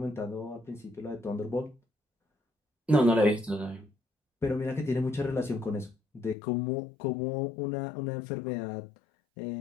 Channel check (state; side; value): drops out; right; at 6.4 s